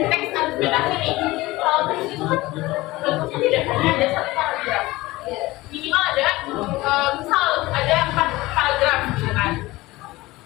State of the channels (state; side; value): quieter; right; 19.5 dB